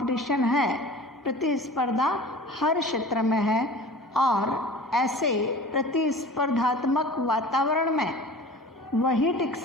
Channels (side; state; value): both; normal; correlation 0.40